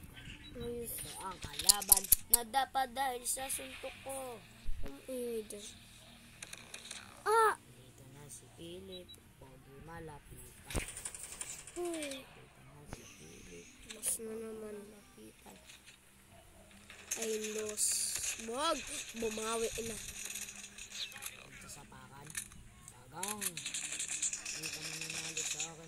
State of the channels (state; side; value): identical; both; correlation 1.00